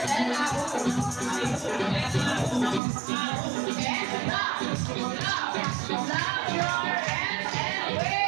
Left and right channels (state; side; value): drops out; left; at 2.8 s